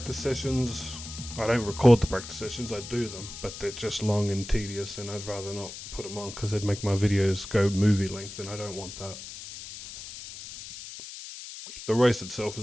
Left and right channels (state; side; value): noise; left; hiss, 12 dB below the sound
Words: sessions. I don't record the practice sessions. I do them, but they're just long and tedious, and I'd rather not put them on because they'd make my videos go movie length, and I don't want that. The race itself